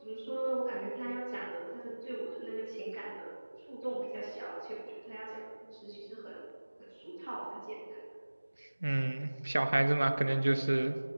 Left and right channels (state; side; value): inverted; both; correlation -1.00